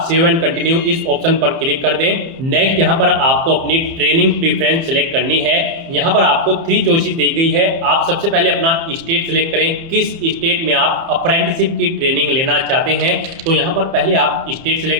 सेव एंड कंटिन्यू इस ऑप्शन पर क्लिक कर दें। नेक्स्ट यहाँ पर आपको अपनी ट्रेनिंग प्रेफरेंस सिलेक्ट करनी है। यहाँ पर आपको 3 चॉइसेस दी गई है। आप सबसे पहले अपना स्टेट सिलेक्ट करें, किस स्टेट में आप अप्रेंटिसशिप की ट्रेनिंग लेना चाहते हैं। तो यहाँ पर पहले आप स्टेट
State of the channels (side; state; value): left; late; 30 ms